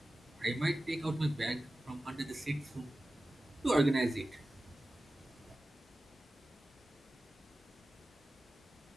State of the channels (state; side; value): normal; both; correlation 0.95